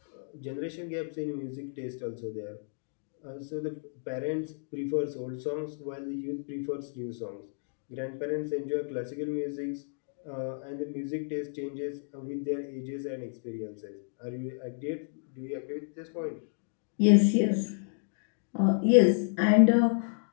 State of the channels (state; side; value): silent; right; digital silence